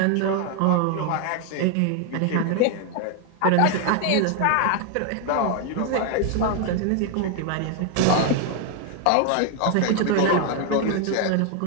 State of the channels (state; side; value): different; both; correlation 0.01